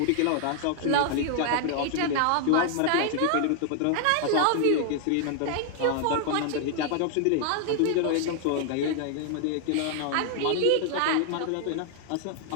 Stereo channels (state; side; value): different; both; correlation 0.00